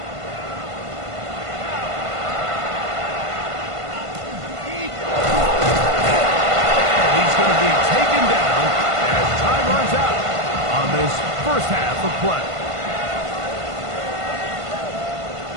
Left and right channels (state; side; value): late; left; 1.5 ms